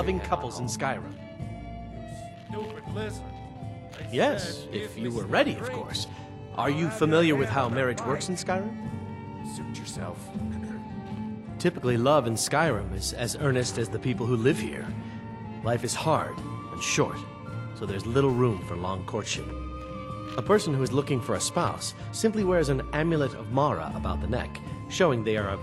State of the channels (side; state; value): both; identical; correlation 1.00